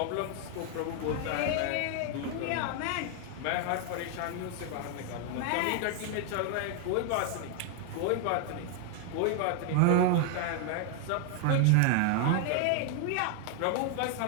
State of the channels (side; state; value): both; different; correlation 0.00